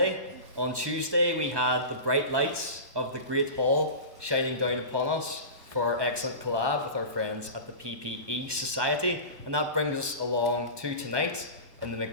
On Tuesday we had the bright lights of the Great Hall shining down upon us for our excellent collab with our friends at the PPE Society, and that brings us along to tonight in the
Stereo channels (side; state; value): left; late; 1.2 ms